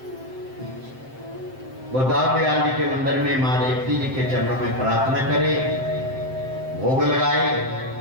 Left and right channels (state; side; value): late; left; 7.7 ms